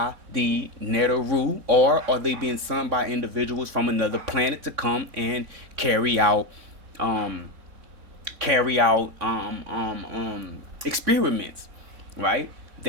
the Neteru, or are they being sent by individuals from another planet to come and carry out um, experiments, right?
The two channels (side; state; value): left; late; 3.6 ms